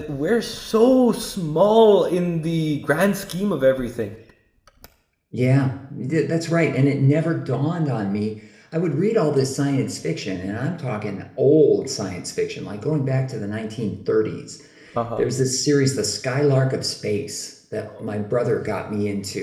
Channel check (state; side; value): identical; both; correlation 1.00